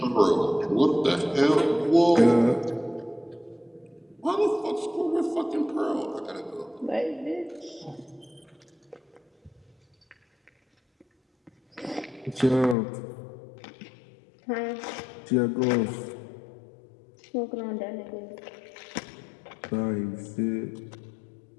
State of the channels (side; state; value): right; drops out; at 12.8 s